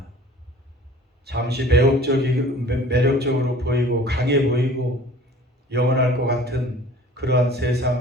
잠시 매력적으로 보이고 강해 보이고 영원할 것 같은 그러한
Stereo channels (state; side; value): normal; both; correlation 0.48